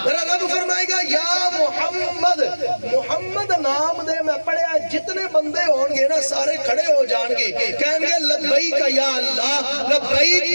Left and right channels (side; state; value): both; inverted; correlation -1.00